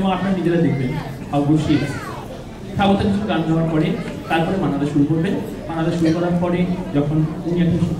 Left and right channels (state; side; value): identical; both; correlation 1.00